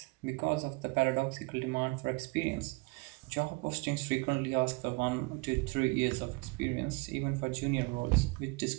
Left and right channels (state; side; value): quieter; left; 27.2 dB